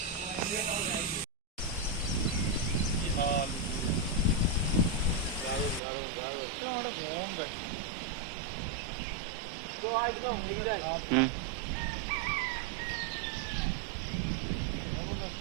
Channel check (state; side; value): drops out; left; at 5.8 s